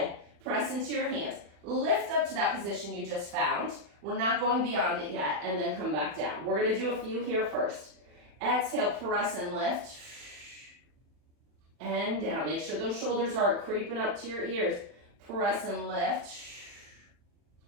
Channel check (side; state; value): left; late; 40 ms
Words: Press into your hands. Lift up to that position you just found. We're not going beyond it yet, and then come back down. We're going to do a few here first. Exhale, press and lift. And down. Make sure those shoulders aren't creeping up to your ears. Press and lift.